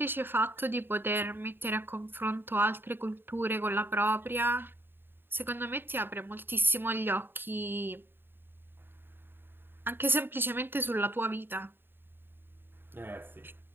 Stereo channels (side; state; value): left; late; 0.10 ms